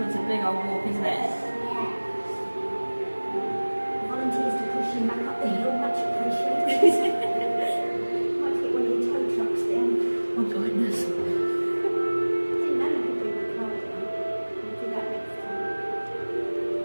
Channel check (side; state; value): both; inverted; correlation -1.00